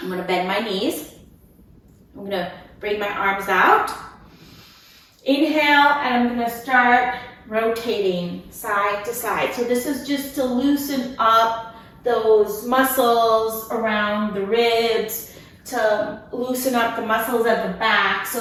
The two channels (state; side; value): identical; both; correlation 1.00